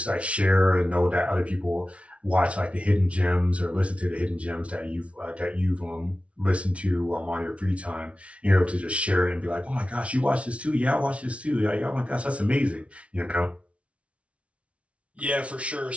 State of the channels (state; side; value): late; left; 0.062 ms